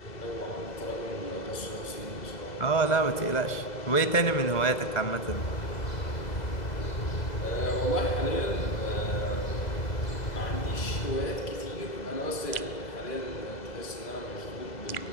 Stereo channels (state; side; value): late; right; 2.0 ms